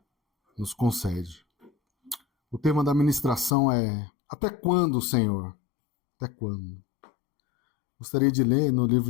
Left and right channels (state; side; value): drops out; right; at 3.6 s